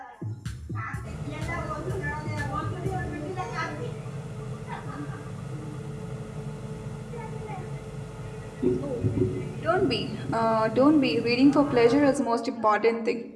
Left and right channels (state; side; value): identical; both; correlation 1.00